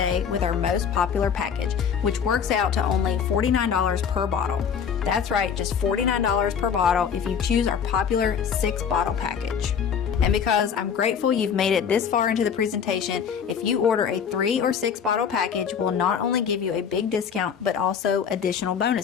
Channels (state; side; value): quieter; right; 7.3 dB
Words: with our most popular package, which works out to only $49 per bottle. That's right, just $49 per bottle if you choose our popular 6-bottle package. And because I'm grateful you've made it this far into the presentation, if you order a 3 or 6 bottle package, we'll not only give you a big discount, but also additional